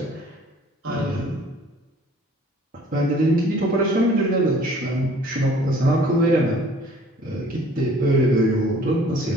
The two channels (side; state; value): both; normal; correlation 0.53